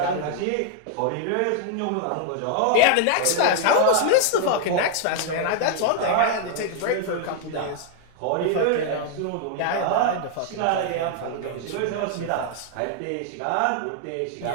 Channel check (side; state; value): both; different; correlation 0.00